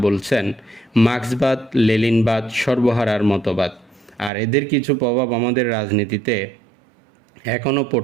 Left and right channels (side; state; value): left; drops out; at 4.3 s